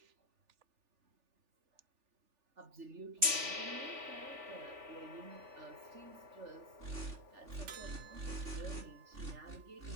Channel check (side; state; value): left; late; 3.4 ms